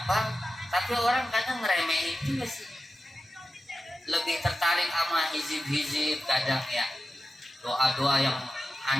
tapi orang kadang ngeremehin juga sih, lebih tertarik sama hizib-hizib kadang ya, doa-doa yang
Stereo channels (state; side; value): normal; both; correlation 0.92